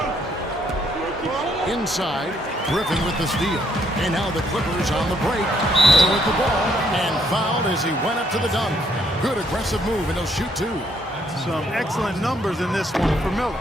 Inside, Griffin with the steal. And now the Clippers on the break. Miller with the ball and fouled as he went up to the dunk. Good aggressive move, and he'll shoot 2. Some excellent numbers in this one for Miller.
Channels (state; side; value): normal; both; correlation 0.70